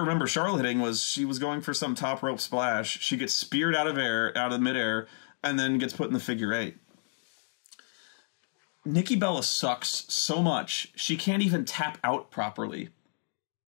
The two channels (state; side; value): silent; right; digital silence